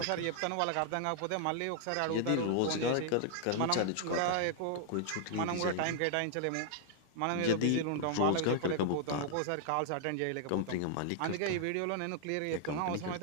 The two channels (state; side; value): different; both; correlation 0.00